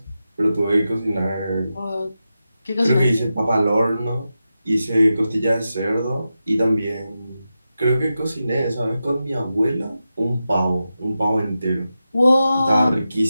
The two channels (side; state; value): both; inverted; correlation -0.90